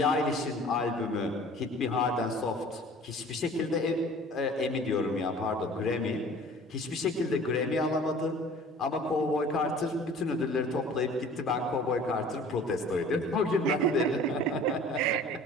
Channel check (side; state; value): both; normal; correlation 0.47